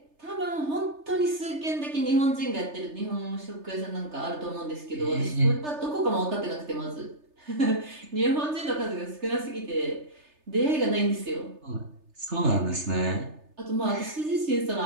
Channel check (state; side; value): late; left; 3.3 ms